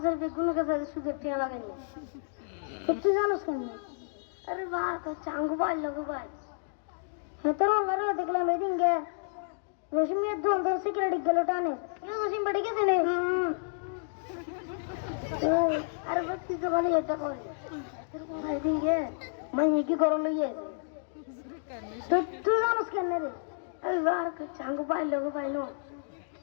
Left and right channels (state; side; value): silent; right; digital silence